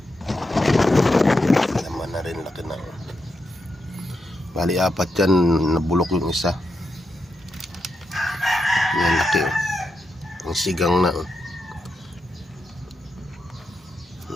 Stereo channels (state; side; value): normal; both; correlation 0.85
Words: Laman na rin, laki na. Bali 4 yan. Nabulok yung isa. Yan, laki. Ang sigang na.